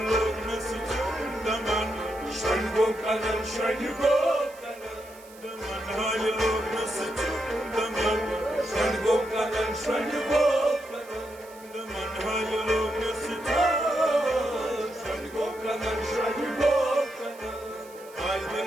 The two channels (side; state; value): right; noise; hiss, 23 dB below the sound